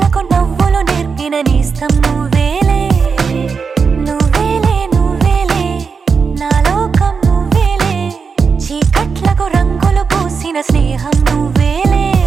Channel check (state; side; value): quieter; left; 5.5 dB